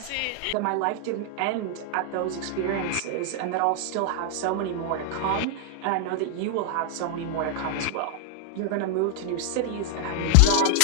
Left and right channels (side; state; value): both; different; correlation 0.00